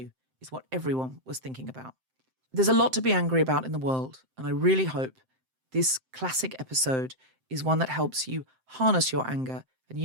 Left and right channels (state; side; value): late; left; 7.7 ms